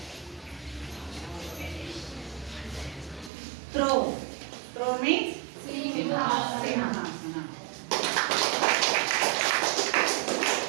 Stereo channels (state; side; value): drops out; left; at 3.3 s